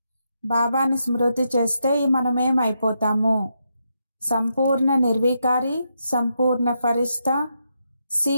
బాబాని స్మృతి చేస్తే మనమేం అయిపోతాము? సంపూర్ణ నిర్వికారి, సంపూర్ణ ఫరిష్తా, సి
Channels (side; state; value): both; inverted; correlation -0.82